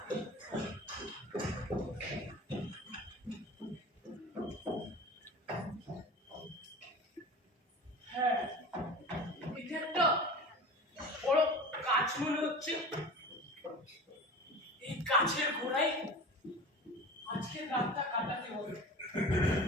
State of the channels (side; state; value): both; normal; correlation 0.35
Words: হচ্ছে এই গাছের গোড়ায় আজকে রাতটা কাটাতে হবে।